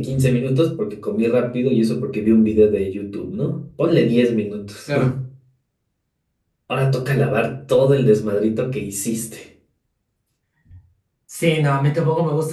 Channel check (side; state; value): both; identical; correlation 1.00